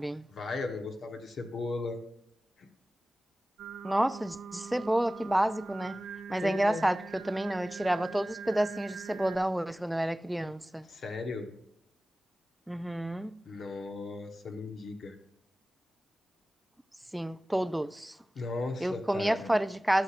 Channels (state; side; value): normal; both; correlation 0.96